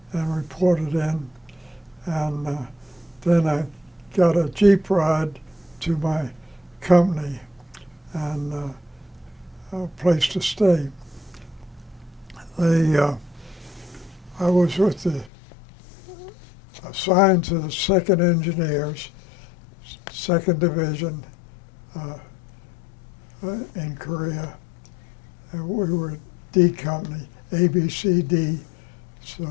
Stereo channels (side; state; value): right; drops out; at 15.3 s